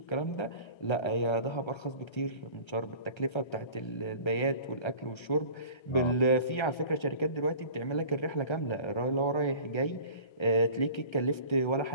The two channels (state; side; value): late; right; 1.3 ms